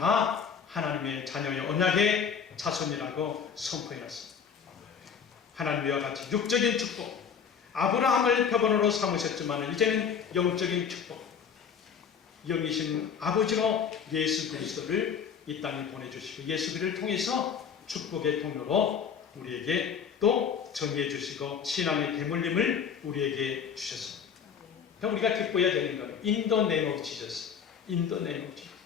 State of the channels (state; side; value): quieter; right; 7.0 dB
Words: 하나님의 자녀의 언약의 자손이라고 선포해놨습니다. 하나님과 같이 육적인 축복, 아브라함을 표본으로 삼으셨지만 이제는 영적인 축복, 영이신 아버지로 예수 그리스도를 이 땅에 보내주시고 예수 그리스도를 통해서 축복의 통로로 우리에게 또 전해 주시고 신앙의 대물림을 우리에게 주셨습니다. 그러니까 우리가 기뻐해야 되는 거예요. In the name of Jesus. In the name of Jesus.